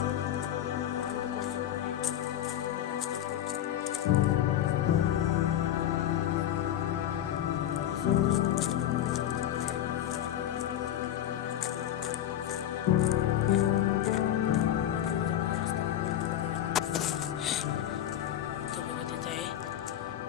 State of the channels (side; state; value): right; quieter; 11.5 dB